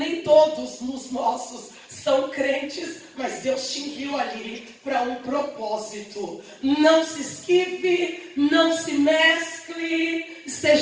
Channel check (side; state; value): both; identical; correlation 1.00